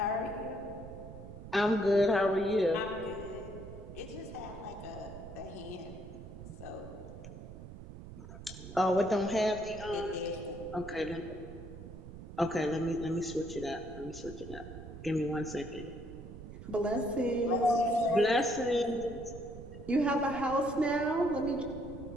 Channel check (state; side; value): noise; right; rumble, 13 dB below the sound